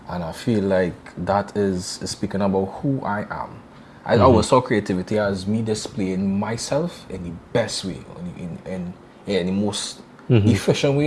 I feel like that is speaking about who I am. I always saw creativity as me displaying myself in the best way, in the most efficient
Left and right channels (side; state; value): both; identical; correlation 1.00